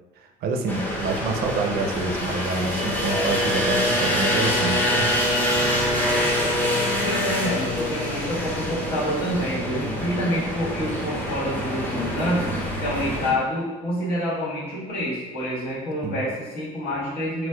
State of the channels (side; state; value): both; normal; correlation 0.37